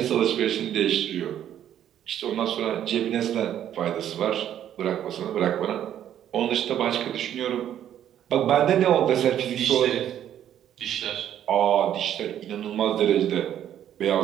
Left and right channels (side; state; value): left; quieter; 10.6 dB